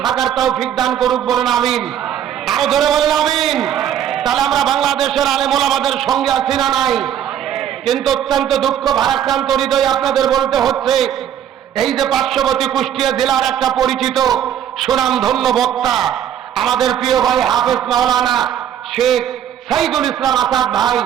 থাকার তৌফিক দান করুক, বলেন আমিন। আরো ধরে বলেন আমিন। তাহলে আমরা বাংলাদেশের আলেম ওলামাদের সঙ্গে আছি না নাই? কিন্তু অত্যন্ত দুঃখ ভারাক্রান্ত হৃদয় আপনাদের বলতে হচ্ছে, এই যে পার্শ্ববর্তী কুষ্টিয়া জেলার একটা পরিচিত সুনামধন্য বক্তা আমাদের প্রিয় ভাই হাফেজ মাওলানা শেখ সাইদুল ইসলাম আসাদ ভাই,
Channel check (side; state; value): left; quieter; 10.0 dB